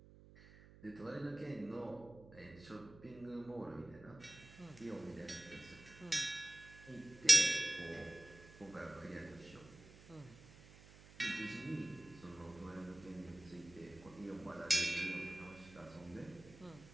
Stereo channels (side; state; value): right; noise; hum, 20 dB below the sound